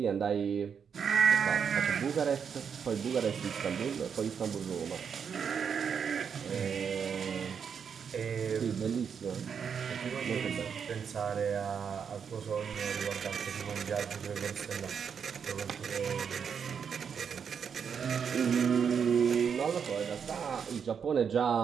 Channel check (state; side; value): quieter; left; 7.0 dB